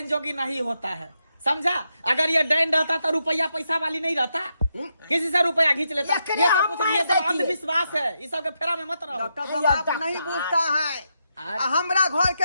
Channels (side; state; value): both; inverted; correlation -0.83